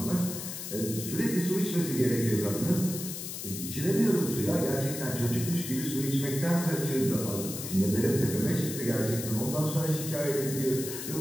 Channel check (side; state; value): left; noise; hiss, 7 dB below the sound